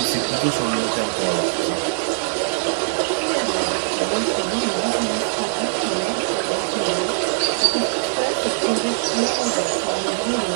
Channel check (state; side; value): silent; left; digital silence